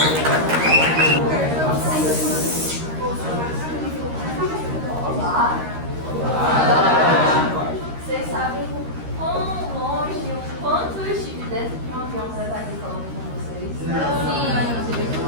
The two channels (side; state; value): left; late; 13 ms